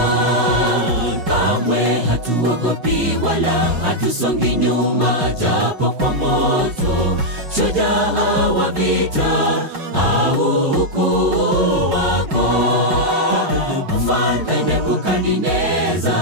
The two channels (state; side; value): late; left; 5.4 ms